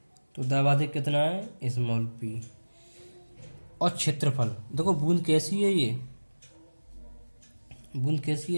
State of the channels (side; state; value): both; inverted; correlation -1.00